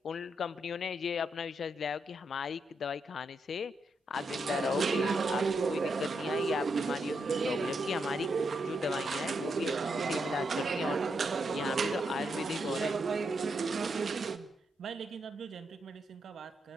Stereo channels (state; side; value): normal; both; correlation 0.81